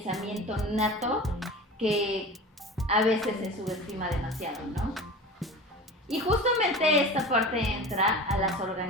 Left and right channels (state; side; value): normal; both; correlation 0.34